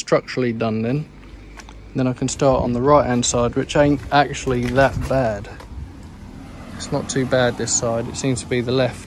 done then. Then I can start on the right hand side, which ain't actually that bad. It's not too bad this side. It seems to be the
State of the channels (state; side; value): identical; both; correlation 1.00